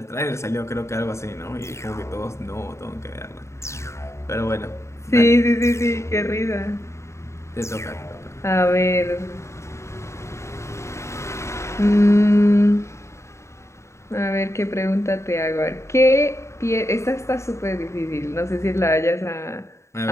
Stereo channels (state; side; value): late; right; 0.14 ms